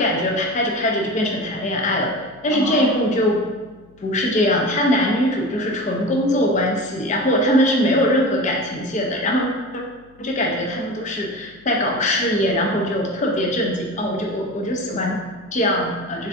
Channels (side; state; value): left; noise; hum, 29 dB below the sound